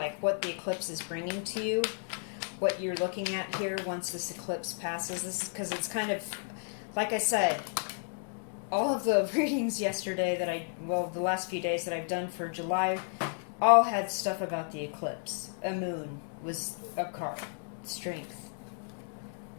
what the eclipse is bringing to you, what you're looking at here once this eclipse passes. This is because it's kind of, like I said, all of the readings yesterday the last few days that I've done for July, all had stuff about the eclipse. A moon was a card. Strength.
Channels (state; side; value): silent; right; 56 dB below the other